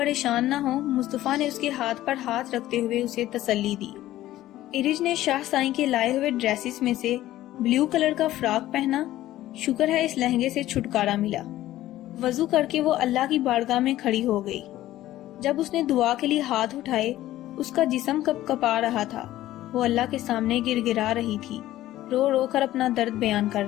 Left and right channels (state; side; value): quieter; right; 14.6 dB